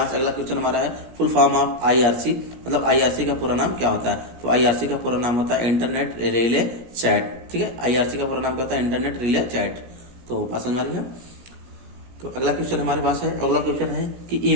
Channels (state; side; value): late; left; 17 ms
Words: से अगला क्वेश्चन हमारा है फुल फॉर्म ऑफ IRC, मतलब IRC का पूरा नाम क्या होता है? तो IRC का पूरा नाम होता है इंटरनेट रिले चैट। ठीक है, IRC का पूरा नाम क्या होता है? Internet relay chat. तो बात समझ आ रही है। तो अगला क्वेश्चन हमारे पास है, अगला क्वेश्चन है कि